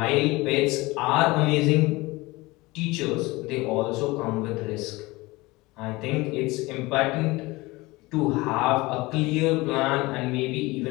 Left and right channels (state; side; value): quieter; right; 21.9 dB